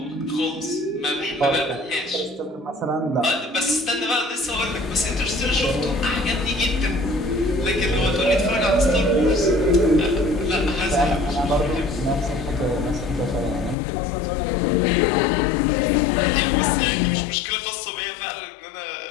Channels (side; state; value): right; drops out; at 13.8 s